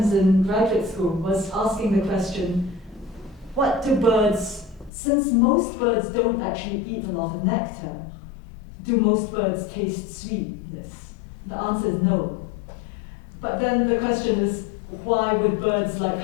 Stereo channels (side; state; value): right; drops out; at 4.9 s